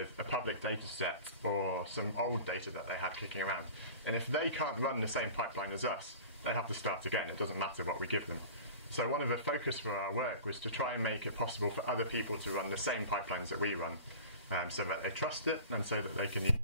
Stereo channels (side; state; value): both; inverted; correlation -0.38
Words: a public data set or some old data that they had kicking around. And if they can't run the same pipeline as us, they have to start again. It doesn't matter what we give them. So one of the focus for our work was to try and make it possible for other people to run the same pipelines that we run, so that they trust it and so that they can use